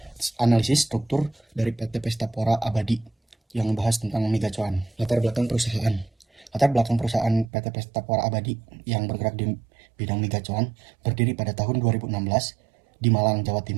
analisis struktur dari PT Pestapora Abadi yang membahas tentang megacuan. Latar belakang perusahaan. Latar belakang perusahaan PT Pestapora Abadi yang bergerak di bidang megacuan berdiri pada tahun 2016 di Malang, Jawa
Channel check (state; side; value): drops out; left; at 7.5 s